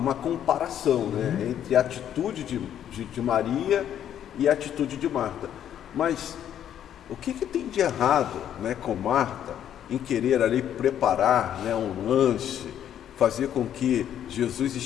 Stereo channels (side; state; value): right; quieter; 10.2 dB